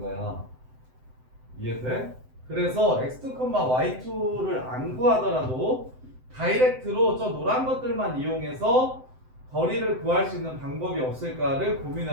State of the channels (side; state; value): left; late; 7.8 ms